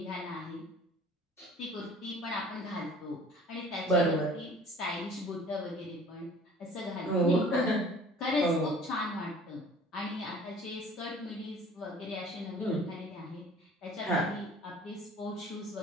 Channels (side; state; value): both; normal; correlation 0.49